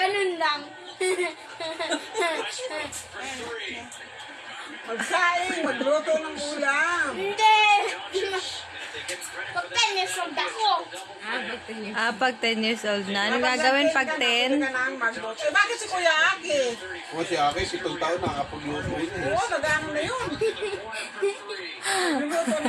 lang. Magsaing, magluto ng ulam. Hindi. Pagkanis ang dako. Pag 10 years old na. Anong gagawin pag 10? Magluto. Eh, bakit si Kuya Aki? O si Aki, 7 taon nakakapagluto yun eh. Oo, nag-ano na yun. Luluto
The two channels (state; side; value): identical; both; correlation 1.00